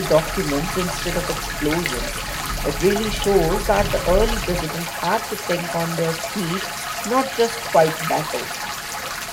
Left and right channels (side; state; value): both; identical; correlation 1.00